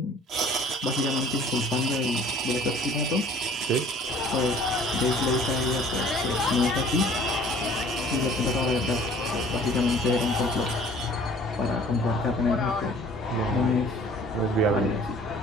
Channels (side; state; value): both; normal; correlation 0.51